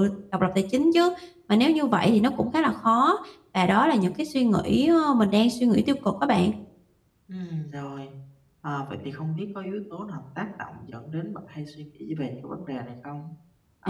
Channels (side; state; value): both; identical; correlation 1.00